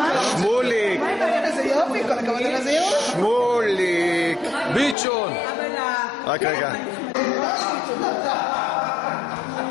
שמוליק. איזה יופי, כל הכבוד על איזה יופי. שמוליק. ביצ'ון. רק רגע.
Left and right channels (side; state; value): right; drops out; at 5.0 s